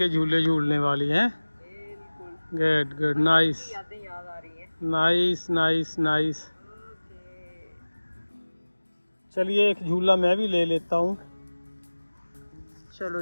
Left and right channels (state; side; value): inverted; both; correlation -1.00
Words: झूले झूलने वाली हैं। बिल्कुल। गुड गुड, नाइस यादें याद आ रही हैं। Nice nice nice. ओके। चलिए एक झूला मैं भी ले लेता हूँ। चलो